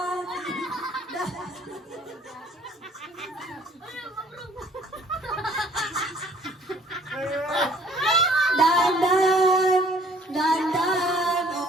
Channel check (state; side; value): normal; both; correlation 0.58